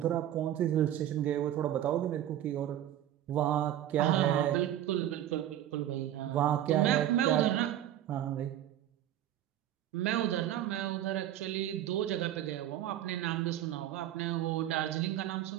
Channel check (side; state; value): left; quieter; 12.1 dB